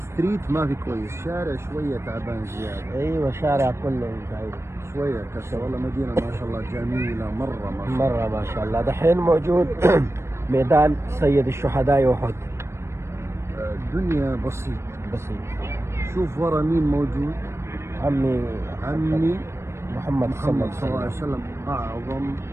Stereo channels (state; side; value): late; left; 0.13 ms